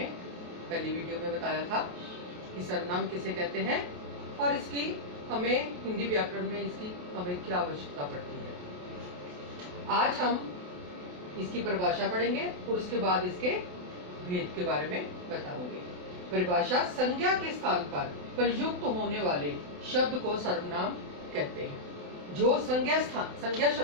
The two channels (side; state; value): left; late; 28 ms